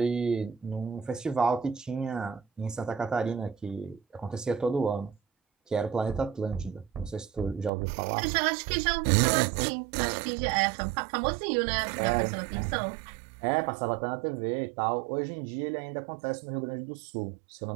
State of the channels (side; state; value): left; drops out; at 7.7 s